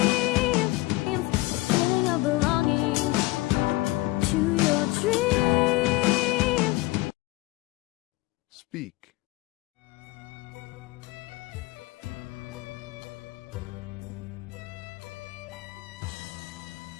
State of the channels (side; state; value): right; quieter; 19.9 dB